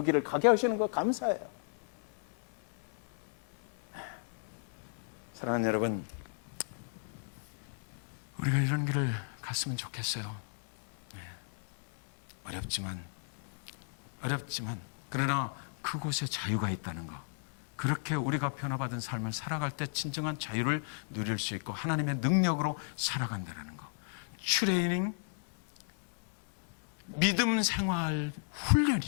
길을 가게 하시는 거 감사해요. 사랑하는 여러분, 우리가 이런 길을 갔으면 좋겠어요. 어렵지만 그러나 그곳에 자유가 있다는 거. 그렇게 우리가 변화받은 삶을 살아갈 때 진정한 자유를 누릴 수 있고 하나님의 능력으로 살아간다는 거. 트레이닝, 믿음 생활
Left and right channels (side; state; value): right; silent; 55 dB below the other